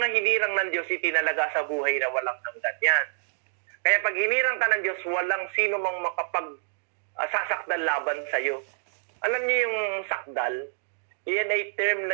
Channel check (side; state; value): left; silent; digital silence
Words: hinirang ng Diyos itinalaga sa buhay na walang hanggan yan. Kaya pag hinirang ka ng Diyos, walang sino mang makapagsasakdal laban sa iyo. Alam niyo yung sakdal? Iyan ay term